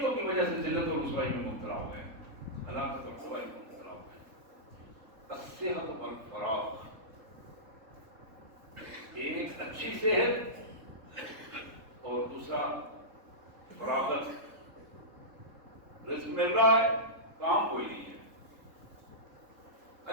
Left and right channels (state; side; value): late; left; 3.8 ms